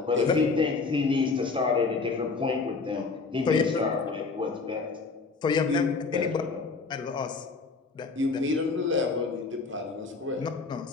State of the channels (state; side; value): quieter; right; 4.3 dB